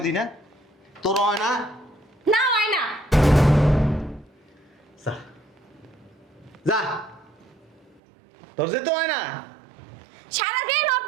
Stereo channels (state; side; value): drops out; left; at 8.0 s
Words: দি না? তোর হয় না? না হয় না। যা যা, তোর যেতে হয় না? সারাদিন